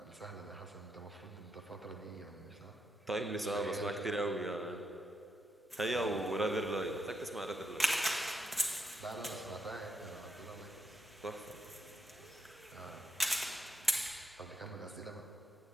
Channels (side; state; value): both; normal; correlation 0.81